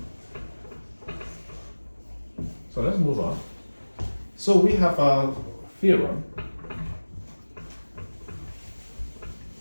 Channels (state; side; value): inverted; both; correlation -1.00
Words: So let's move on. So we have a theorem.